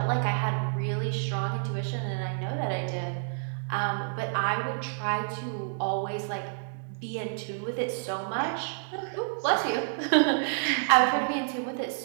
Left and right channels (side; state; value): left; silent; digital silence